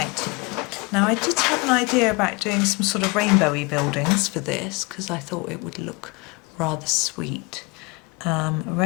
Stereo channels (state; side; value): quieter; right; 26.2 dB